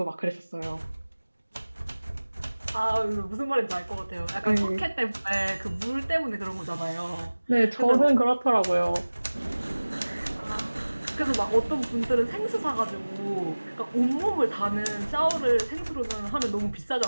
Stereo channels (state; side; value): inverted; both; correlation -1.00